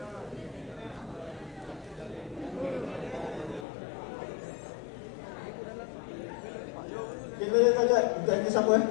Belon kau jat, bukan siapa eh?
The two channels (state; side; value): drops out; right; at 3.7 s